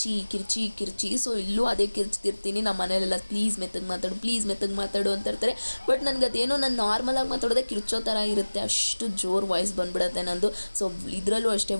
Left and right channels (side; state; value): both; inverted; correlation -1.00